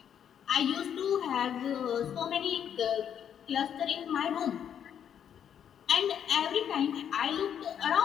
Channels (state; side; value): quieter; right; 8.8 dB